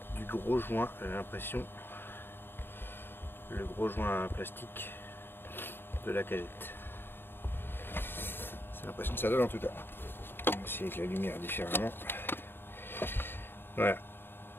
du gros joint, j'ai l'impression. Le gros joint plastique de la cagette. C'est l'impression que ça donne en tout cas. On va essayer avec la lumière différemment. Voilà.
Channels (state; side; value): late; right; 0.10 ms